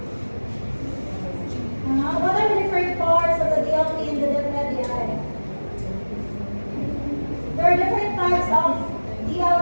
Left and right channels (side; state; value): both; inverted; correlation -1.00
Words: What are the different parts of the DLP in the DepEd? There are different types of